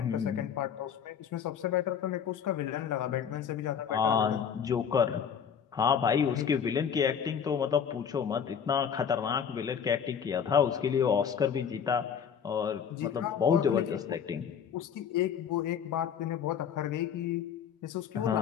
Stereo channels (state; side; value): quieter; right; 7.6 dB